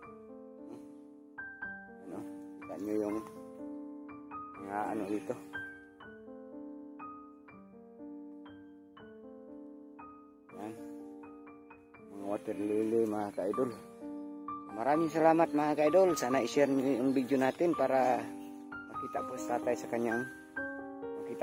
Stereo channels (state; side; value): identical; both; correlation 1.00